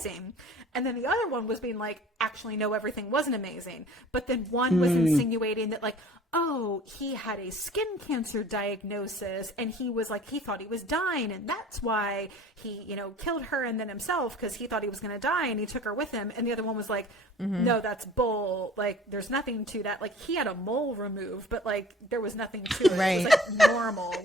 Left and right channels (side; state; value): both; normal; correlation 0.47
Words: And then the other one was being like, actually, no, everything wasn't amazing. But then one was insinuating that like, oh, he had a skin cancer diagnosis and he was like, he thought he was dying. And that's why he, killed her and then himself because he thought he was going to die and he took her with him. And the other one was like, no, that's bull. Like, there's nothing to that. Like, he had a mole removed, but like, there was nothing to it. Right. It was like normal.